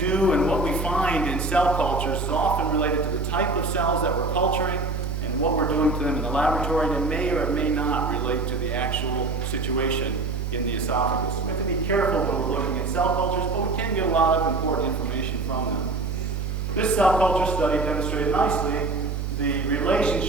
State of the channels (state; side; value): noise; right; hum, 3 dB below the sound